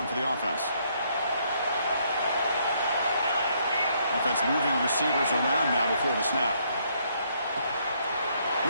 for the offense. Offense moving receivers around now before the snap.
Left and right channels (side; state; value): both; inverted; correlation -0.70